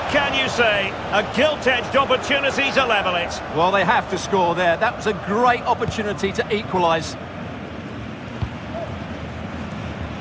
can you say? A gilt-edged opportunity to level it. Well, they have to score there. That was a great opportunity to equalise.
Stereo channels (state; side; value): identical; both; correlation 1.00